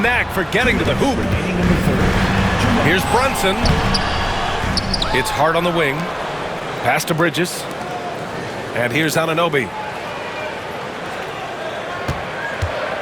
knack for getting to the hoop. Here's Brunson. It's Hart on the wing. Pass to Bridges. And here's Anunoby.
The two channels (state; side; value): identical; both; correlation 1.00